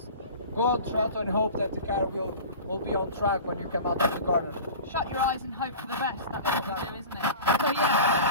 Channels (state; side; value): inverted; both; correlation -0.37